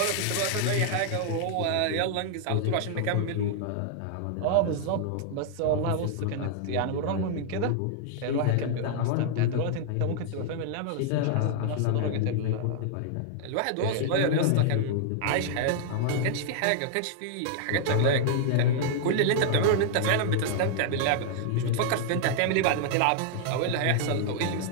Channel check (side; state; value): both; different; correlation -0.01